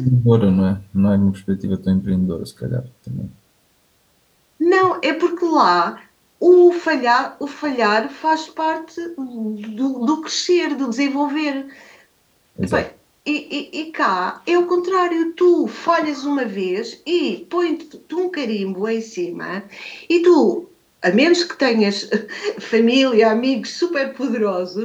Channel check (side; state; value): both; identical; correlation 1.00